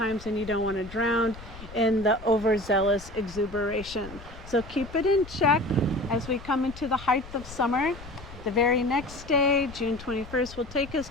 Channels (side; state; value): left; noise; rumble, 16 dB below the sound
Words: and you don't want to drown in the overzealous exuberation. So keep it in check as we come into the height of summer. The very next day, June 21st, will take us